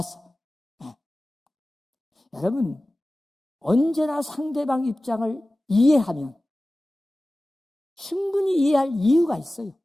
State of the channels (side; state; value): both; normal; correlation 0.97